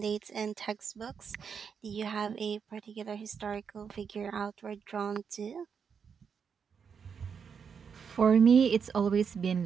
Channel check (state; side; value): quieter; left; 6.6 dB